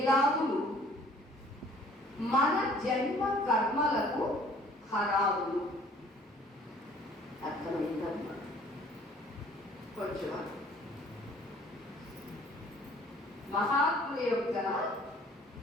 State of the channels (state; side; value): normal; both; correlation 0.55